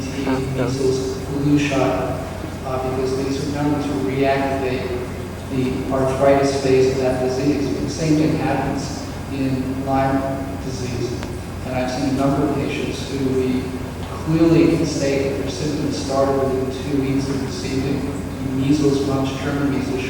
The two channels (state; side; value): identical; both; correlation 1.00